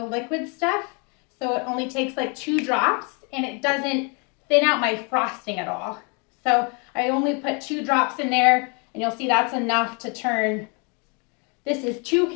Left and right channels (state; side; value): quieter; right; 34.0 dB